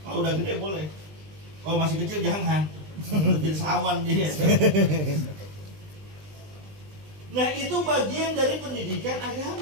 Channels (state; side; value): late; left; 20 ms